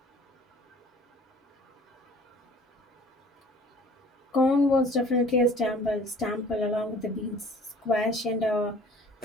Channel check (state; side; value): normal; both; correlation 0.50